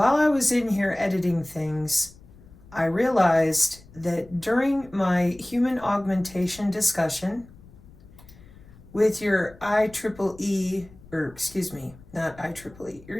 I was in here editing things, I realized that during my human augmentation discussion with your IEEE, your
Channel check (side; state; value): left; noise; rumble, 22 dB below the sound